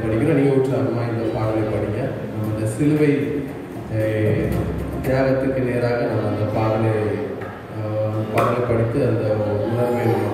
படிக்கிறோம். நீங்கள் உற்சாகமாக இந்த பாடலை படிங்க. நம்ம இந்த சிலுவை தியாகத்துக்கு நேராக நம்ம அந்த பாடலை படித்து அந்த உணர்வை நம்ம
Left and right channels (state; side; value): identical; both; correlation 1.00